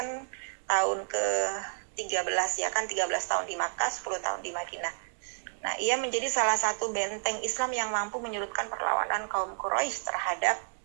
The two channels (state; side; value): silent; left; digital silence